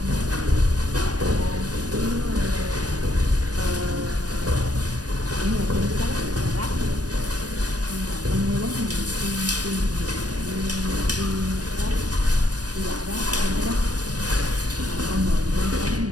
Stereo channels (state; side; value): late; left; 0.68 ms